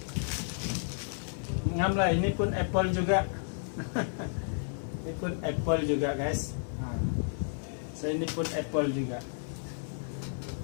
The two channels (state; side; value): silent; right; digital silence